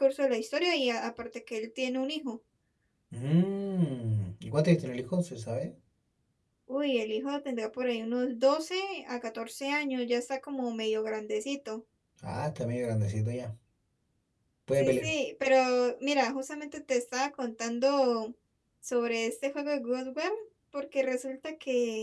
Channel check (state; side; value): identical; both; correlation 1.00